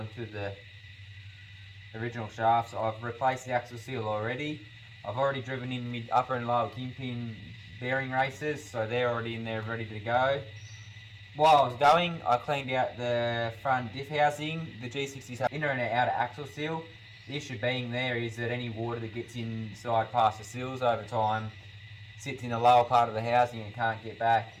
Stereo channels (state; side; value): identical; both; correlation 1.00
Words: to the original shafts. I've replaced the axle seal already. I've already driven in mid, upper and lower kingpin bearing races, so they're already in there ready to go. While I was going, I cleaned out the front diff housing, the G60's inner and outer axle seal. The issue being there is that any water that gets inside past the seals over time sits in the lower part of the housing and can't get back.